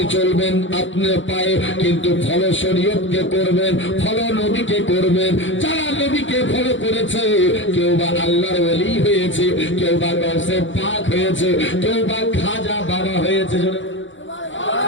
চলবেন আপনার পায়ে, কিন্তু ফলো শরীয়তকে করবেন, ফলো নবীকে করবেন। যারা নবীকে ফলো করেছে, কেউ বা আল্লাহর ওলি হয়েছে, কেউ বা গৌসে পাক হয়েছে, কেউ বা খাজা বাবা হয়েছে।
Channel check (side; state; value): right; late; 0.55 ms